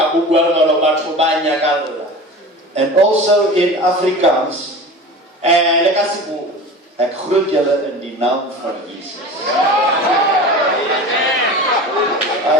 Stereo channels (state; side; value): normal; both; correlation 0.35